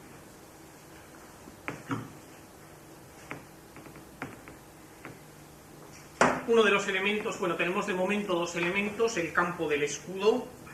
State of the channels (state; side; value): identical; both; correlation 1.00